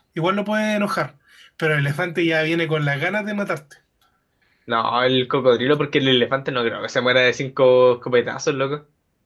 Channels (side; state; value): both; identical; correlation 1.00